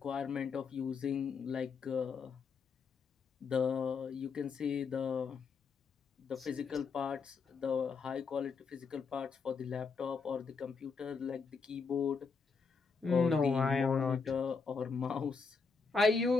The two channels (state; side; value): quieter; right; 5.0 dB